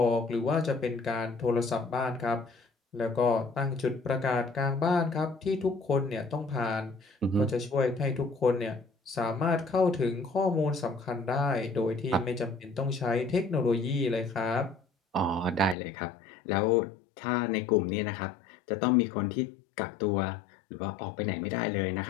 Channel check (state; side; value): drops out; right; at 15.8 s